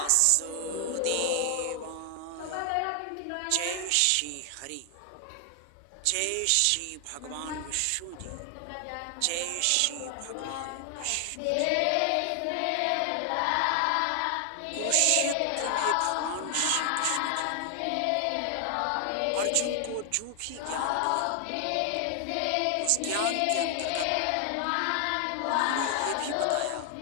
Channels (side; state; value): both; different; correlation 0.00